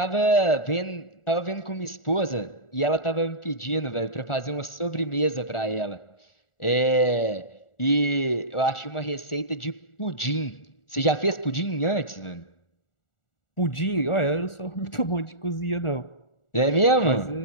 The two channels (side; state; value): right; late; 1.4 ms